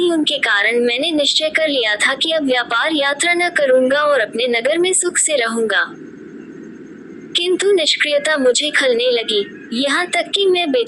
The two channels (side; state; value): both; identical; correlation 1.00